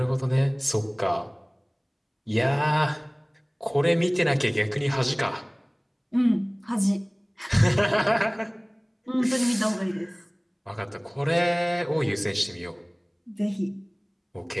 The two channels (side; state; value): both; identical; correlation 1.00